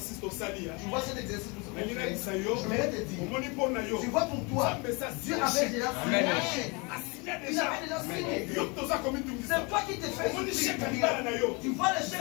au sali. Tu vois cet exercice que Je vais te dire. Tu vois pour toi, Dieu avait déjà signé un chèque. Il avait déjà signé. C'est toi qui te fais souffrir. Tu vois le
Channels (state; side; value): quieter; right; 29.4 dB